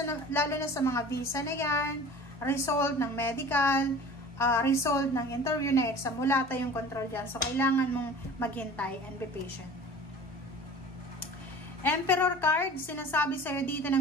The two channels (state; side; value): normal; both; correlation 0.42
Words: na sa mga visa na yan, result ng medical, result ng interview na exam, wala tayong control dyan. So, kailangan mong maghintay and be patient. Emperor card, sinasabi sa'yo dito